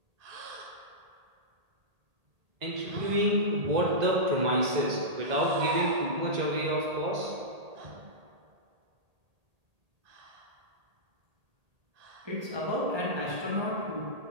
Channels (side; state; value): left; late; 1.8 ms